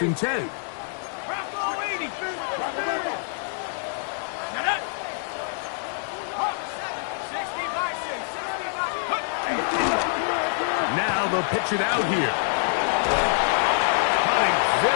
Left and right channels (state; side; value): silent; right; digital silence